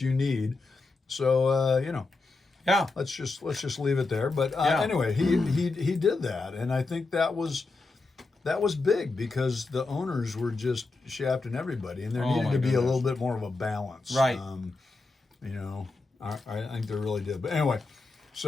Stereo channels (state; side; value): quieter; right; 3.6 dB